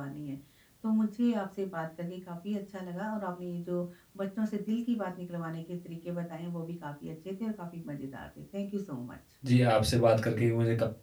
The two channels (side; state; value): both; identical; correlation 1.00